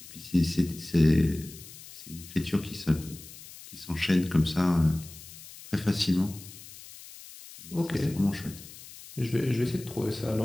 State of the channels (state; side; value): noise; left; hiss, 17 dB below the sound